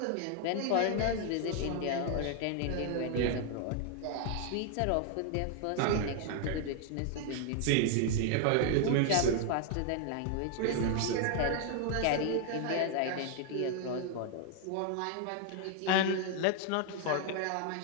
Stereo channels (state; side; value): different; both; correlation 0.00